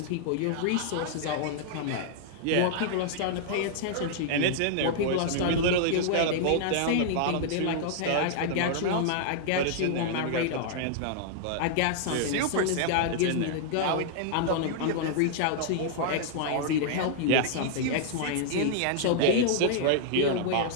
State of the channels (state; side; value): different; both; correlation -0.01